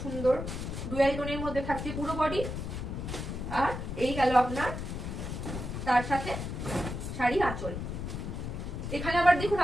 সুন্দর ডুয়াল টোনের মধ্যে থাকছে পুরো বডি। আর এই গেল আপনার তার সাথে শাড়ি আঁচল। এখানে আবার দেখুন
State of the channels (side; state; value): left; noise; rumble, 5 dB below the sound